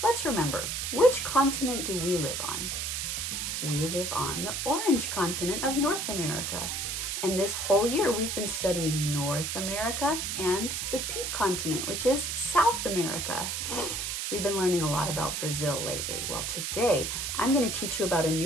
let's remember, which continent do we live on? We live on the orange continent of North America. And this whole year we've been studying North America and the pink continent, which is South America. We've been learning a lot about Brazil lately. Well, today I'm going to teach you about a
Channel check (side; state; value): right; noise; hiss, 2 dB below the sound